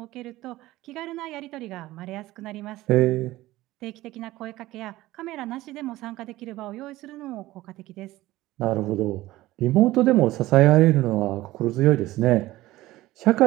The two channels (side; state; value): left; quieter; 17.1 dB